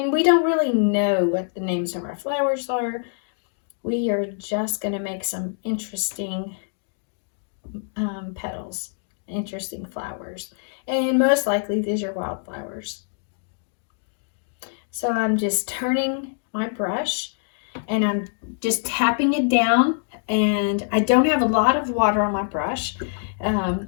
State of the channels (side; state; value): right; silent; digital silence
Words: we don't really know what the names of our flowers are. We are just going to make some interesting petals, interesting flowers. And most likely these are wildflowers. So I'm just turning my brush and I'm just tapping it down. And I don't have a lot of water on my brush.